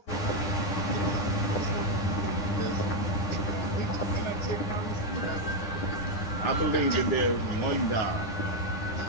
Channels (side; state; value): right; late; 10 ms